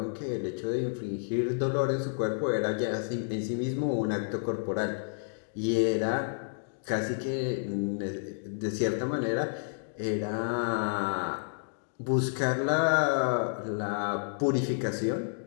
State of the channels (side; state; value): right; silent; digital silence